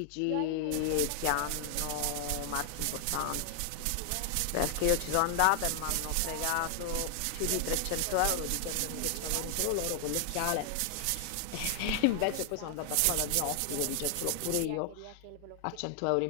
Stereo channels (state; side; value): different; both; correlation 0.00